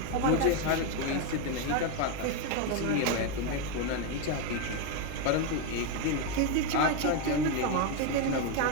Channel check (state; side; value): different; both; correlation 0.02